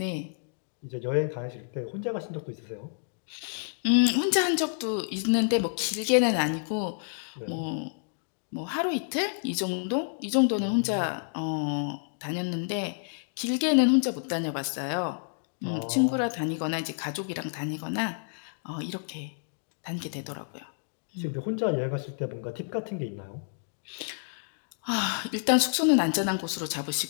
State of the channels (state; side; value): silent; right; digital silence